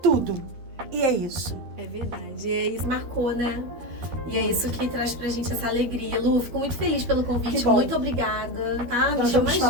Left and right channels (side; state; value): left; late; 12 ms